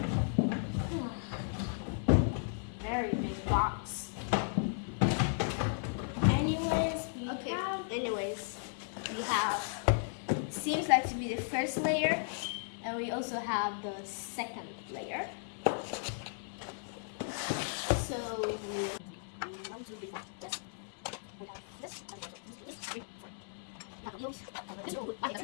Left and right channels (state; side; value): silent; right; digital silence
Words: Very big box. Anyways, we have, seems like to be the first layer, and we also have the second layer. So we